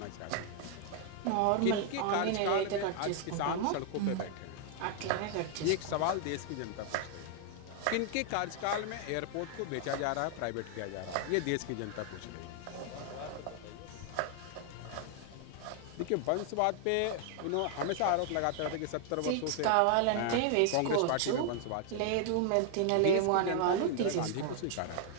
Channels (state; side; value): different; both; correlation 0.00